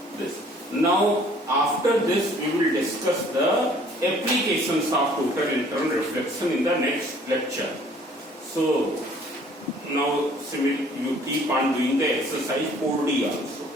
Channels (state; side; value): normal; both; correlation 0.56